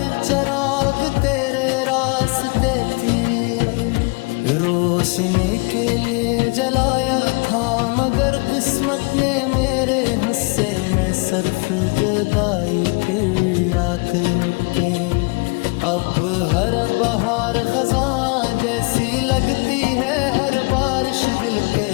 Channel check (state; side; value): quieter; right; 30.8 dB